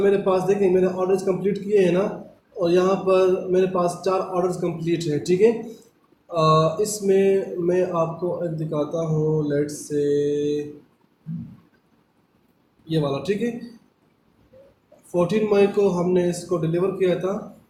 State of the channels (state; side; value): identical; both; correlation 1.00